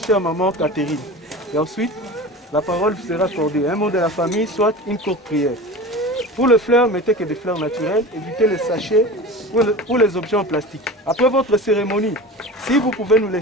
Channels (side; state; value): both; normal; correlation 0.33